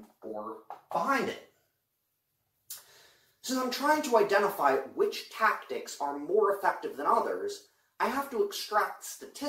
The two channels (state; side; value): identical; both; correlation 1.00